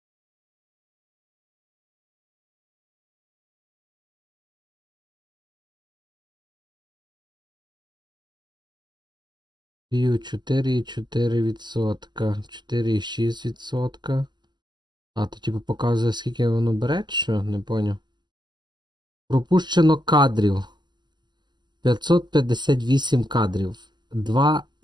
View 4,4%. 4,6%. А, то типу показує, скільки воно бере, що? Не поняв. Пропущено кадрів. 558 кадрів.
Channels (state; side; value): late; left; 0.21 ms